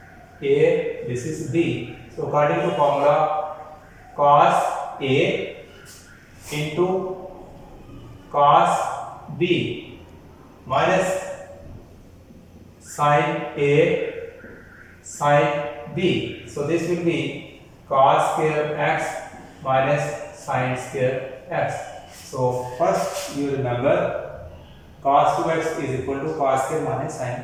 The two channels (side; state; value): both; identical; correlation 1.00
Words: A, this is B. So according to formula, cos A into cos B minus sin A sin B. So this will be cos square x minus sin square x. So first you remember cos 2x is equal to cos square minus sin